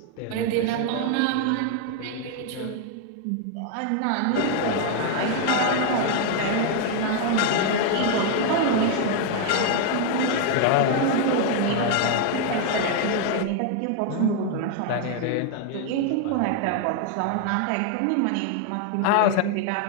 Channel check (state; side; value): different; both; correlation 0.00